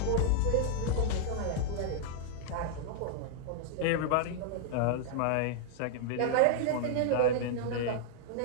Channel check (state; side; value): different; both; correlation -0.01